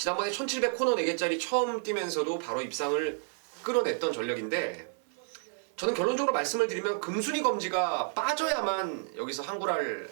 1700 코너 4개짜리 처음 뛰면서도 바로 입상을 끌어냈던 전력인데 저는 결론적으로 말씀을 드리면 금순위 검지가 빠져야만 여기서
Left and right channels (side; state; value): left; silent; 57 dB below the other